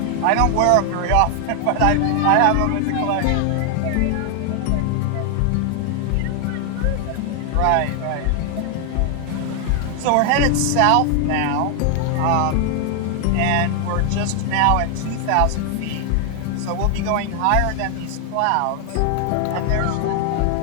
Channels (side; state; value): both; different; correlation 0.00